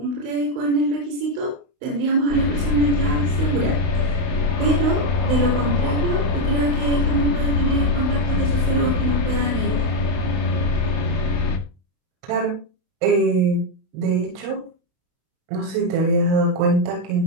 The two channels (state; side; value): late; left; 31 ms